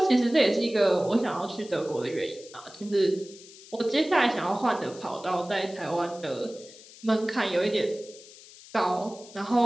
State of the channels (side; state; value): left; noise; hiss, 20 dB below the sound